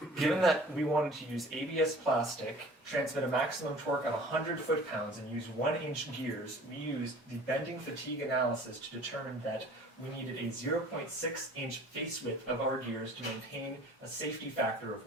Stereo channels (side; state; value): both; normal; correlation 0.47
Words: Given that we wanted to use ABS plastic, transmit a maximum torque of 100 foot-pounds, and use 1-inch gears, we used the bending fatigue analysis to determine that we needed a 0.6-inch face width of our gears to maintain a safety factor of